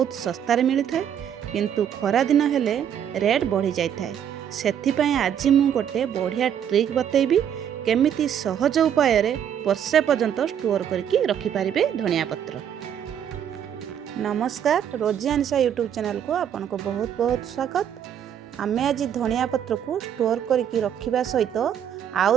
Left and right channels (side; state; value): left; quieter; 9.1 dB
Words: सस्तार मिलता है किंतु खरा दिन हेले रेट बढ़ी जाए। से आज मु गोटे बढ़िया ट्रिक बतेबी केमिति सहज उपाय वर्षे पर्यंत स्टोर करके रखिपारे धनिया पत्र। नमस्कार, रोजी अनिशा यूट्यूब चैनल को आपन को बहुत बहुत स्वागत। आमे आज धनिया पत्र को स्टोर करके रखिबा सहित आउ